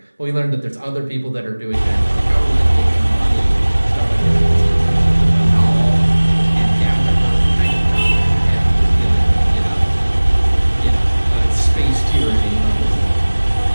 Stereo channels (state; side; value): inverted; both; correlation -1.00